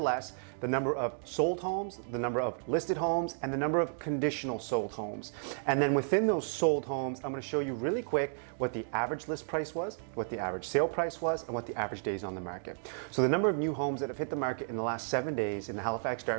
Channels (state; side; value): silent; left; digital silence